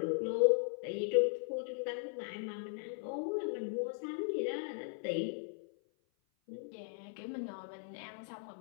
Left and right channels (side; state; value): right; silent; 52 dB below the other